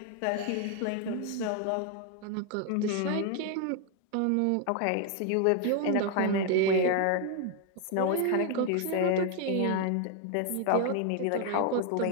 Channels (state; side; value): different; both; correlation 0.00